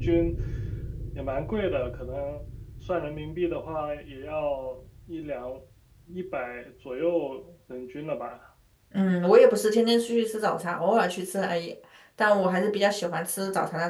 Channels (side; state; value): both; identical; correlation 1.00